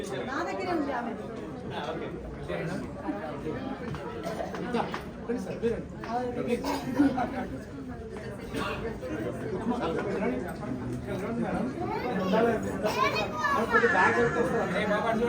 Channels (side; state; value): both; identical; correlation 1.00